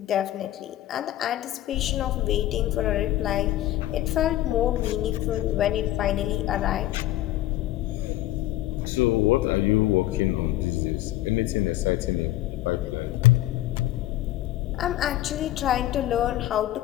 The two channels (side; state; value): right; quieter; 14.8 dB